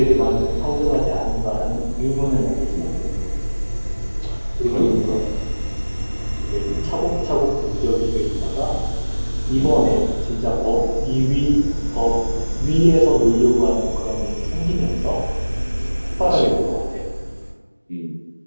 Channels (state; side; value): inverted; both; correlation -1.00